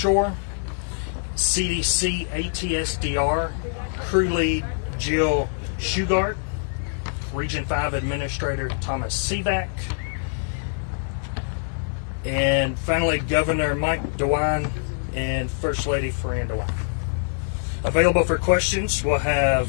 CDC ATSDR Crew Lead Jill Shugart, Region 5 Administrator Thomas Sivak, and finally Governor Mike DeWine and First Lady Fran DeWine. Available for questions, we'll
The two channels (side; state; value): right; silent; digital silence